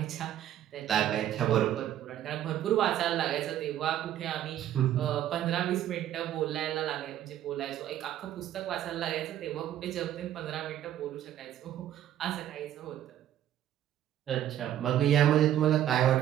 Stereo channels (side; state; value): left; quieter; 11.7 dB